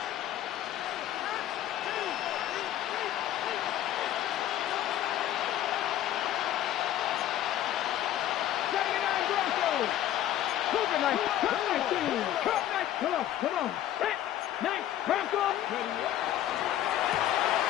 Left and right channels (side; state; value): right; quieter; 12.3 dB